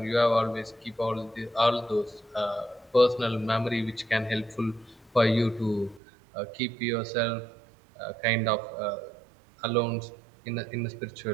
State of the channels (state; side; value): drops out; left; at 6.0 s